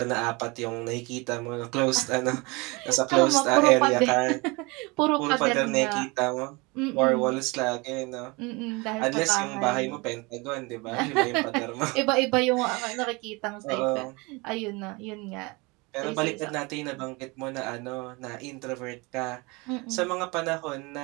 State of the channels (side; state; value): left; quieter; 26.3 dB